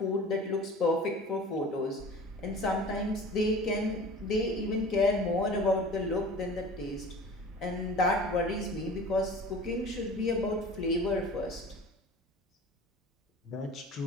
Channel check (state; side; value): normal; both; correlation 0.41